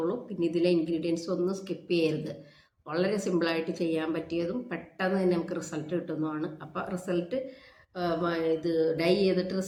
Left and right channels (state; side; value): identical; both; correlation 1.00